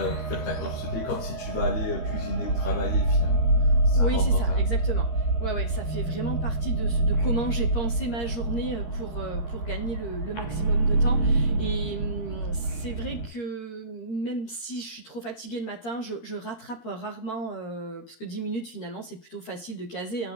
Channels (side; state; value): right; late; 13 ms